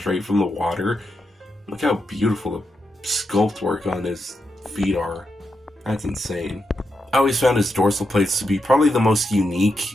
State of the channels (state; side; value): normal; both; correlation 0.84